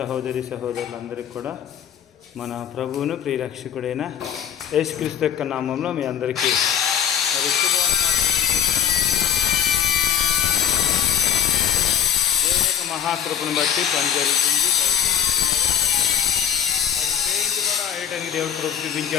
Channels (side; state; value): right; quieter; 9.2 dB